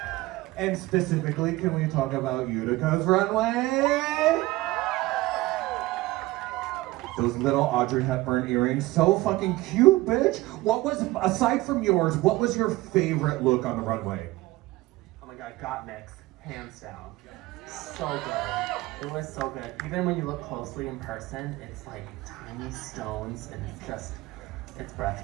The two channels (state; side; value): quieter; left; 19.1 dB